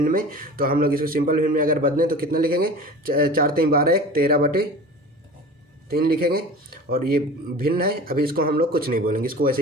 में। तो हम लोग इसको सिंपल भिन्न में अगर बदलें तो कितना लिखेंगे, 4 3 12 1 13/3 लिखेंगे। और ये भिन्न है, अभी इसको हम लोग कुछ नहीं बोलेंगे, इसको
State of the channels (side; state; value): both; normal; correlation 0.37